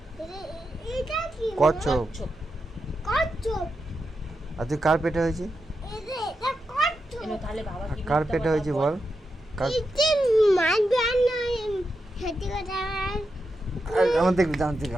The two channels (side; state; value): both; normal; correlation 0.87